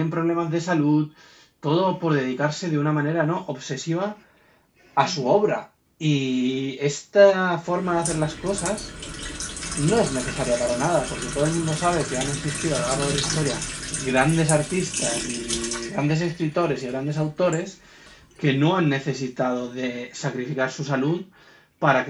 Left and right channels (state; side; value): identical; both; correlation 1.00